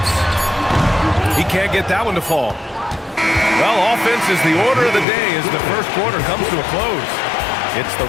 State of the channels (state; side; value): drops out; right; at 5.1 s